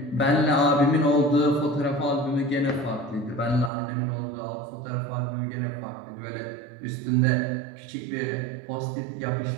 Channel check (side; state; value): left; drops out; at 3.7 s